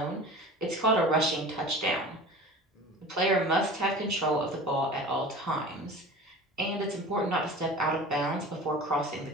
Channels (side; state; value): both; normal; correlation 0.38